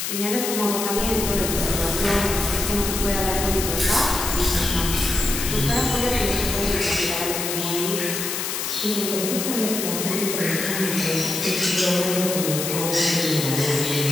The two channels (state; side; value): noise; left; hiss, 3 dB below the sound